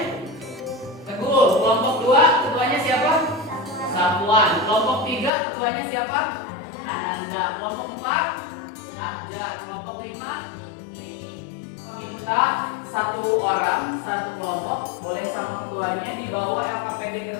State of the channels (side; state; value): right; drops out; at 5.3 s